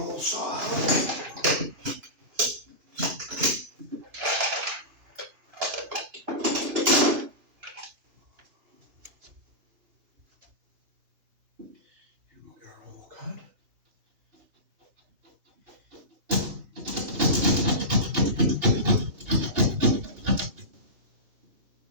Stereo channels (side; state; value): left; late; 2.9 ms